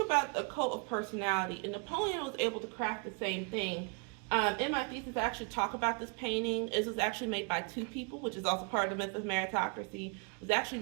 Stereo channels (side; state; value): left; quieter; 35.1 dB